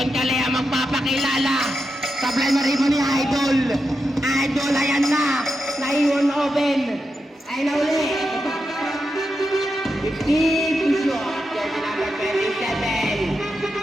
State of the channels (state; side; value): normal; both; correlation 0.87